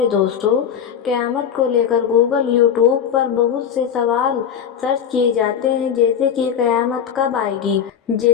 दोस्तों, क़यामत को लेकर गूगल यूट्यूब पर बहुत से सवाल सर्च किए जाते हैं, जैसे कि क़यामत कब आएगी,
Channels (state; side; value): quieter; right; 8.2 dB